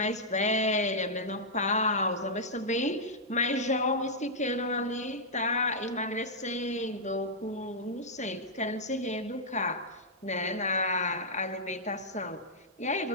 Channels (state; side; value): normal; both; correlation -0.09